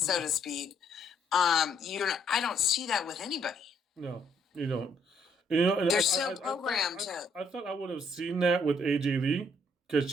to speak. I don't see that with anybody. No, you don't. You know, and they're so programmed. I thought I would have seen that with AJ Lee because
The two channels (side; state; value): both; normal; correlation 0.68